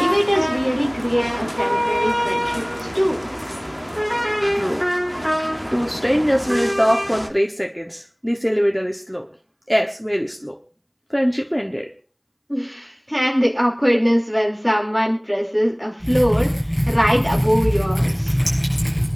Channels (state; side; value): identical; both; correlation 1.00